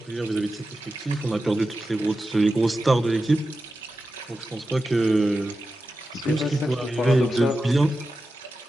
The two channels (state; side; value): normal; both; correlation 0.92